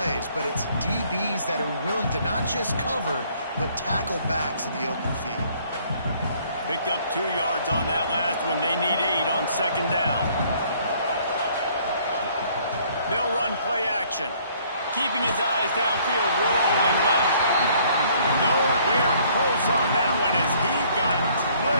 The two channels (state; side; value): inverted; both; correlation -0.61